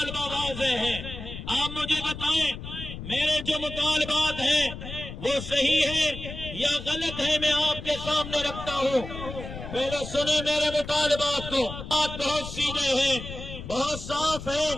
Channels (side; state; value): left; noise; rumble, 10 dB below the sound